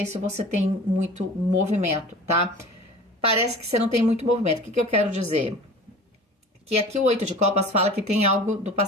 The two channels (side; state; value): both; normal; correlation 0.40